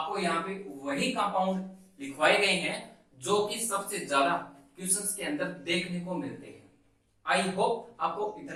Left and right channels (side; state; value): both; identical; correlation 1.00